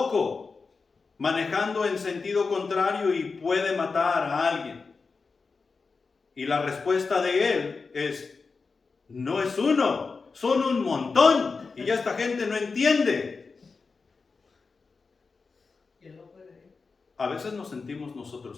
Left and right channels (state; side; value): quieter; right; 4.5 dB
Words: manejando en sentido contrario y puede matar a alguien. Y la respuesta de él es, no es uno, son un montón. Y ya esta gente no entiende. A veces nos sentimos